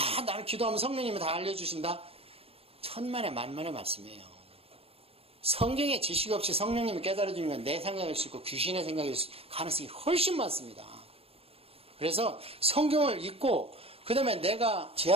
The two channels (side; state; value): left; late; 0.28 ms